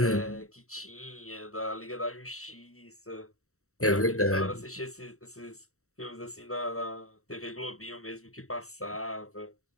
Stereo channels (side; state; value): right; late; 0.64 ms